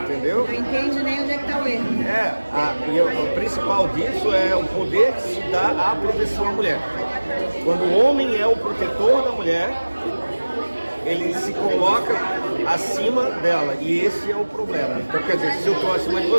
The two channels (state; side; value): inverted; both; correlation -1.00